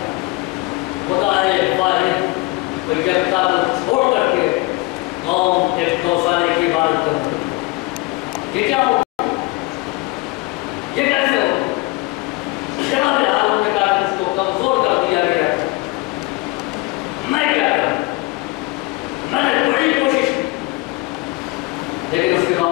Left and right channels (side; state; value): right; quieter; 22.7 dB